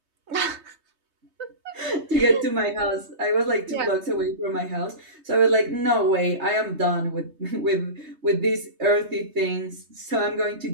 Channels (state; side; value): late; left; 3.2 ms